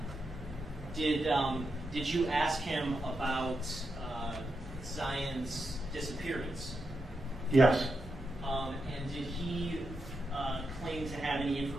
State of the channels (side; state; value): both; normal; correlation 0.86